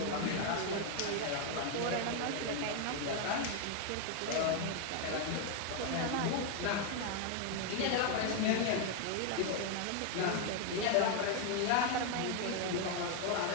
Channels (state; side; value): different; both; correlation 0.01